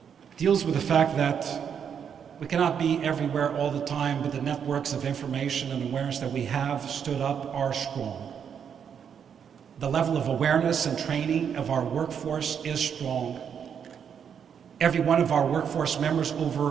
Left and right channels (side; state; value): left; quieter; 7.7 dB